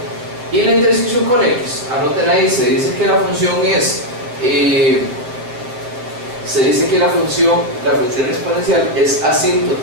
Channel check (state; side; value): late; left; 7.8 ms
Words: Y la intersección con X, anoten ahí, se dice que la función es la función exponencial es